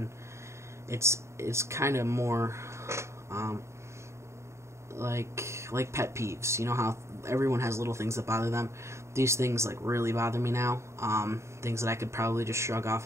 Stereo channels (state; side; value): late; left; 0.14 ms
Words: it's kind of more like pet peeves. You know how everyone has little things that bother them? These things like really bother me now. Things that I could probably just shrug